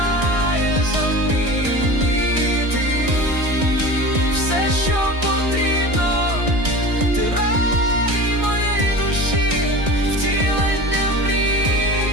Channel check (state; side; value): late; left; 1.6 ms